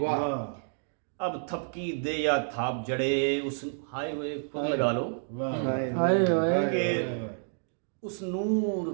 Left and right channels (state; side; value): silent; left; digital silence